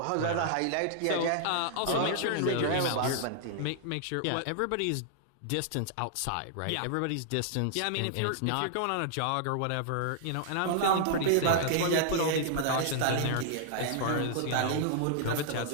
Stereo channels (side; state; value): both; different; correlation -0.01